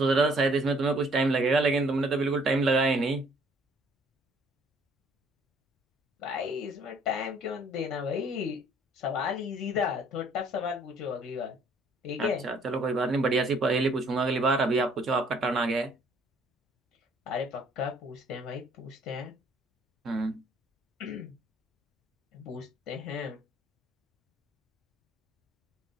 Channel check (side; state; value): both; normal; correlation 0.60